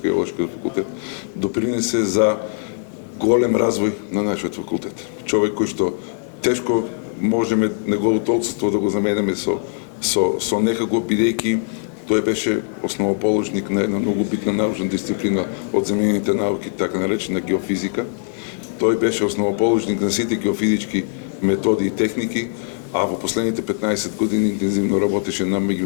факултет, допринесе за голем развој на нашиот факултет. Човек кој што тешко можеме неговото отсутство да го заменеме со некако, бидејќи тој беше основоположник на една многу битна научна дисциплина од земјените науки, така наречена геофизика. Тој беше основоположник на сите геофизички методи и техники, а во последните 15 години интензивно работеше на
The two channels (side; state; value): right; silent; digital silence